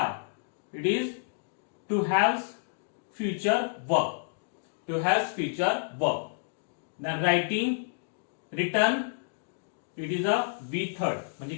इट इज to have future verb. To have future verb. Then writing return it is a be third म्हणजे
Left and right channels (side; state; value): right; silent; digital silence